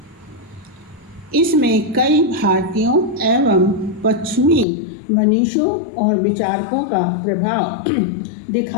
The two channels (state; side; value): drops out; right; at 4.7 s